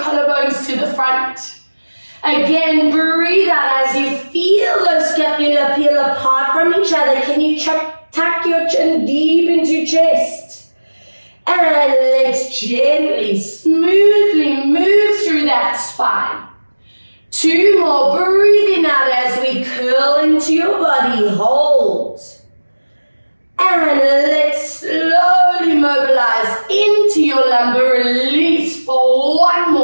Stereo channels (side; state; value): both; inverted; correlation -1.00